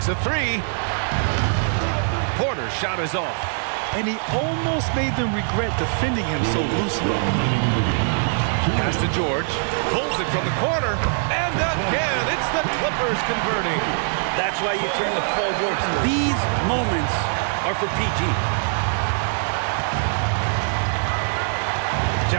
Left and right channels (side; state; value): left; silent; 64 dB below the other